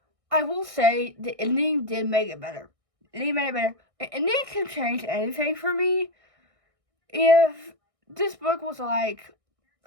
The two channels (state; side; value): late; left; 1.6 ms